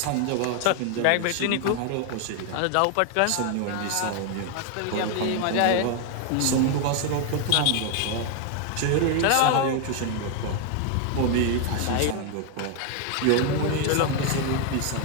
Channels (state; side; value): different; both; correlation 0.00